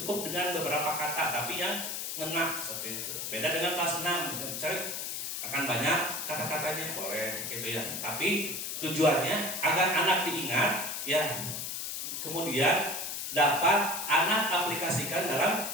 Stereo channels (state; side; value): noise; left; hiss, 4 dB below the sound